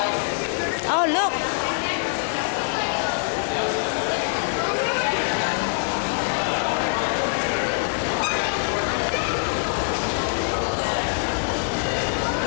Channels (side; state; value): right; silent; digital silence